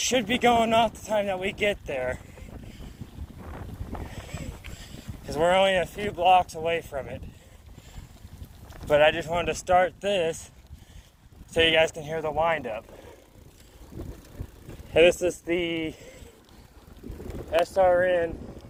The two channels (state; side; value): identical; both; correlation 1.00